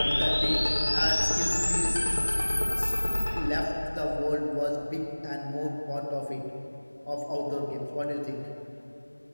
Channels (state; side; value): inverted; both; correlation -1.00